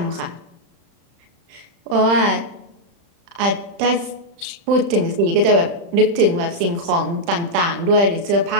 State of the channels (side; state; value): left; late; 35 ms